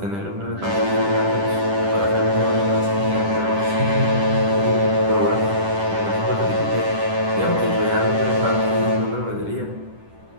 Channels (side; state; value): left; late; 10 ms